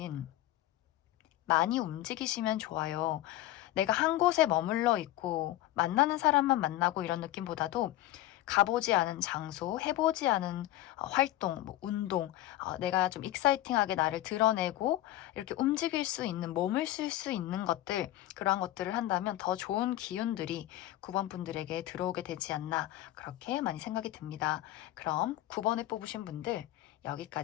많이 움직이시면 좋아요. 내가 한 곳에 머물러 있고 만나는 사람만 만나고 이런 느낌보다도 가보지 않은 장소, 해보지 않은 활동, 운동, 내가 좀 익사이팅하게 나를 드러내고 이렇게 움직일 수 있는, 몸을 쓸 수 있는 것들, 그러한 것들을 한다면 더 좋은 기운들이 9번 분들에게 들어오게 되지 않나, 그렇게 많이 생각이 듭니다. 그럼 9번을 뽑으신 분들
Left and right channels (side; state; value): right; quieter; 15.0 dB